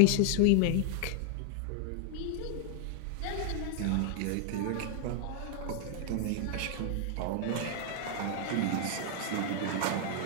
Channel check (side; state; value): both; different; correlation 0.00